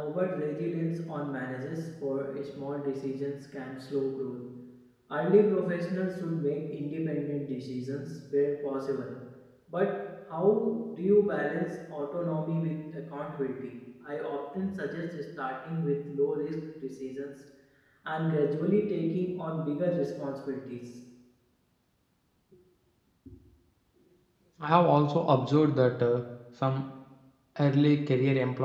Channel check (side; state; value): both; identical; correlation 1.00